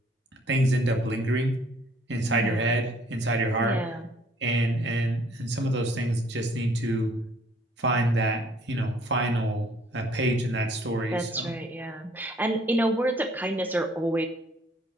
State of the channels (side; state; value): both; normal; correlation 0.60